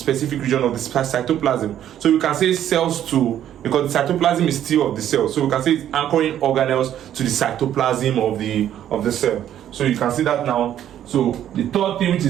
region of the cytoplasm. So you can say cells to because the cytoplasm is still of the cell. So we can say it's anchoring organelles to the cytoplasm of the cell. So you can see that now. So the third thing, which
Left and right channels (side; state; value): left; quieter; 11.0 dB